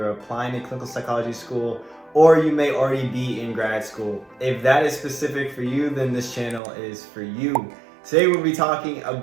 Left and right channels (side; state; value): left; drops out; at 6.6 s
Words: applying to clinical psychology school, or you may already be in grad school. If that is specific for you, then this channel is for you. Today we'll be talking